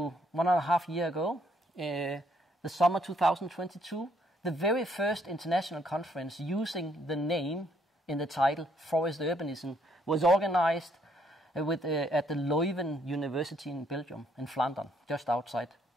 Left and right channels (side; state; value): both; normal; correlation 0.69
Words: 1.5 years ago, the summer 2022, the very first international conference using the name in the title Forest Urbanism was organized at the Leuven University in Belgium, in Flanders, just outside